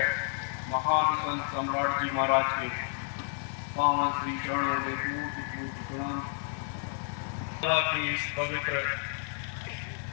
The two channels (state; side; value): silent; right; 57 dB below the other